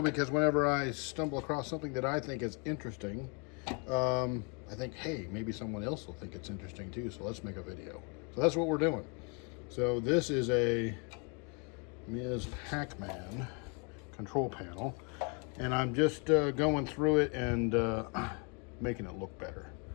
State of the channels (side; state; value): right; quieter; 35.0 dB